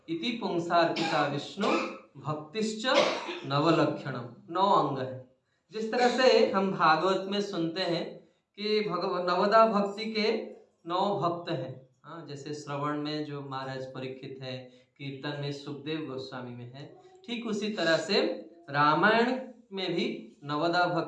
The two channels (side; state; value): both; identical; correlation 1.00